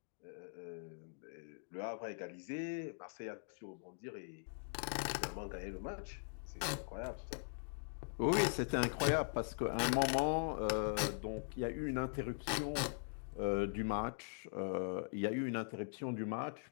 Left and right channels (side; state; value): right; silent; digital silence